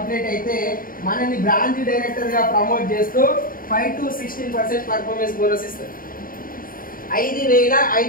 అయితే మనల్ని బ్రాంచ్ డైరెక్టర్ గా ప్రమోట్ చేస్తూ 5 to 16% పర్ఫార్మెన్స్ బోనస్ ఇస్తారు.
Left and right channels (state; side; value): late; right; 0.41 ms